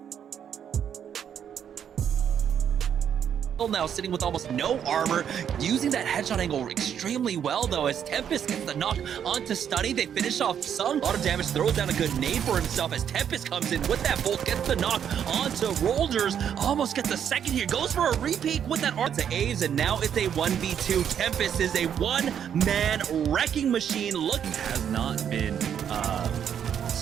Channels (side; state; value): left; quieter; 8.7 dB